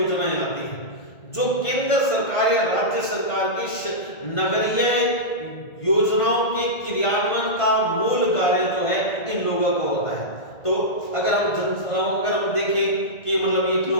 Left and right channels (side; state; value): right; late; 1.5 ms